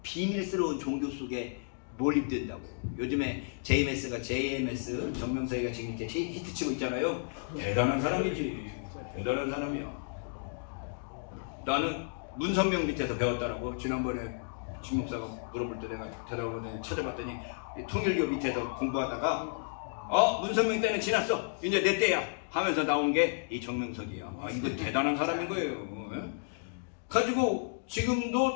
종교 속에 몰입된다고. 요즘에 JMS 정명석이가 지금 이렇게 히트치고 있잖아요. 대단한 사람이지. 대단한 사람이야. 나는 문선명 밑에서 배웠다라고. 지난번에 진 목사가 물어볼 때 내가 대답을 찾아봤더니 통일교 밑에서 공부하다가 문선명 때는 지났어. 이제 내 때야 하면서 나온 게 이 정명석이야. 이거 대단한 사람인 거예요. 가지고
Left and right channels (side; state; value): right; silent; digital silence